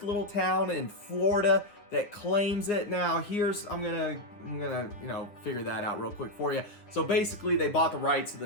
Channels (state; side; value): late; right; 9.8 ms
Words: little town in Florida that claims it. Now, I'm gonna figure that out real quick for you. So basically, they bought the rights to